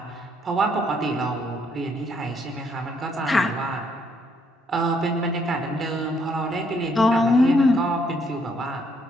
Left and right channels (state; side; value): normal; both; correlation 0.70